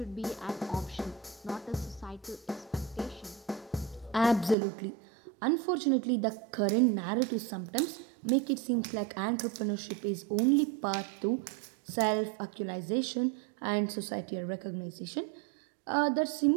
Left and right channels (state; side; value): drops out; left; at 4.5 s